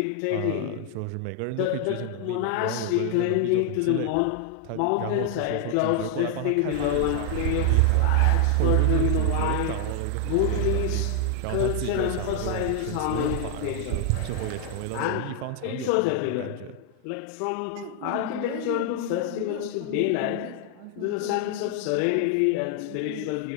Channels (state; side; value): different; both; correlation 0.00